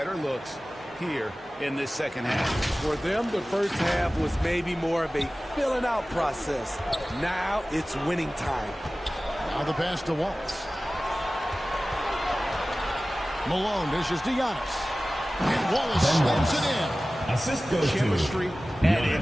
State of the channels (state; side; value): normal; both; correlation 0.97